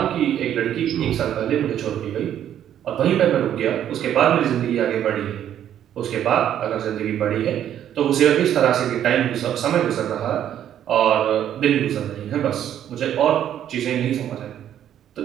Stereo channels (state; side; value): quieter; left; 10.5 dB